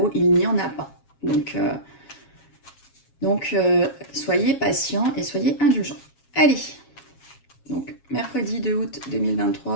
il n'y en a pas. Donc soyez patients et soyez indulgents. Allez, donc mercredi 2 août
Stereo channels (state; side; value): late; right; 7.3 ms